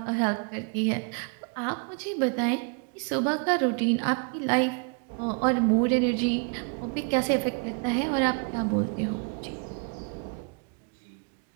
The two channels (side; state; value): left; quieter; 36.8 dB